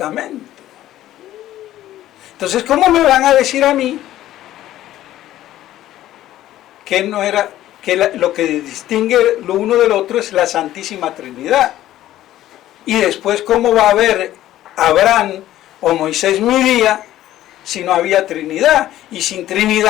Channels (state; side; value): quieter; right; 13.7 dB